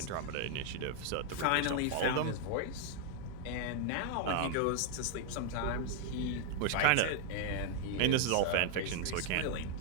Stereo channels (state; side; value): different; both; correlation 0.00